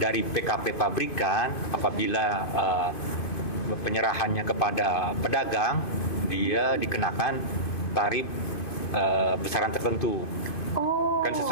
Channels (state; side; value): late; right; 2.5 ms